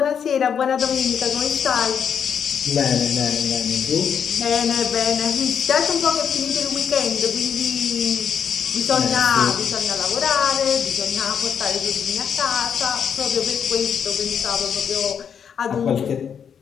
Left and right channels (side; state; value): right; quieter; 7.6 dB